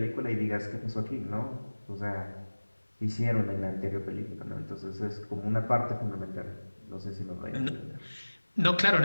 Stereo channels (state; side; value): inverted; both; correlation -1.00